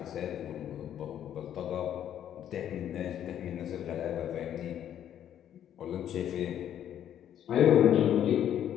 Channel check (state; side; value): quieter; right; 10.3 dB